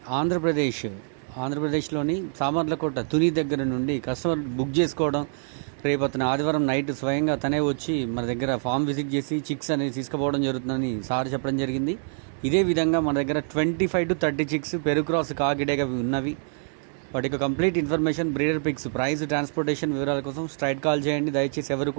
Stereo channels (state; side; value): silent; left; 61 dB below the other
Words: ఆంధ్రప్రదేశ్లోని సామర్లకోట తుని దగ్గర నుండి కస్టమర్ బుక్ చేసుకోవడం, రేపు అతను ఆదివారం నైట్ స్వయంగా తనే వచ్చి మన దగ్గర ఫామ్ విజిట్ చేసి చిక్స్ అనేది తీసుకుపోవడం జరుగుతుందని సార్ చెప్పడం జరిగింది. ఇదే విధంగా మన దగ్గర 25 to 30 చిక్స్ పెరుగు క్రాస్ కాకిడేగా ఉన్నవి. వాటి యొక్క complete information, breeder pics, price, transportation వివరాల కోసం స్ట్రైట్ కాల్ చేయండి. దయచేసి ఎవరు